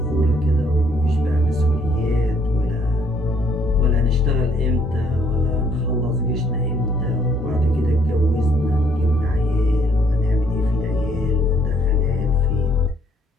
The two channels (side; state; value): both; normal; correlation 0.67